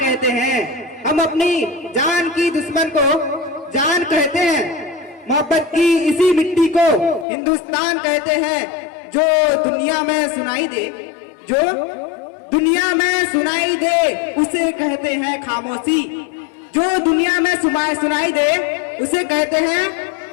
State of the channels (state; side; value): drops out; right; at 7.2 s